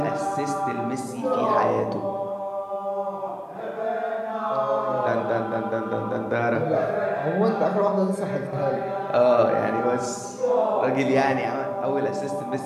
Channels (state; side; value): identical; both; correlation 1.00